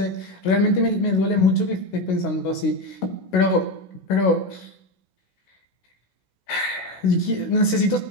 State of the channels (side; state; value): right; late; 16 ms